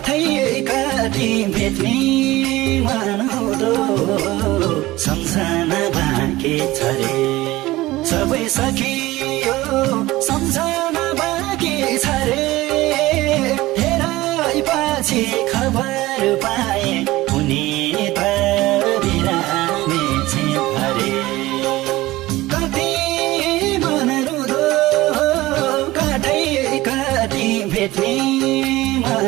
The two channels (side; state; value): left; quieter; 18.2 dB